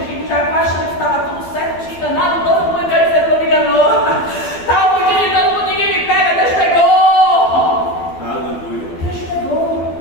Jacó achando que estava tudo certo, tinha enganado todo mundo, Deus dizendo que não me enganou. Estava fugindo de todo mundo, ninguém me pega, Deus pegou. Aleluia! Deus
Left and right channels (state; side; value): late; right; 12 ms